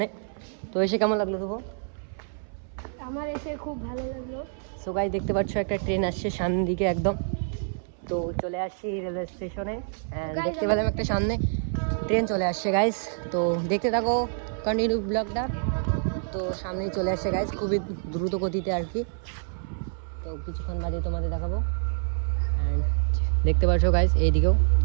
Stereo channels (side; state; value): left; silent; 60 dB below the other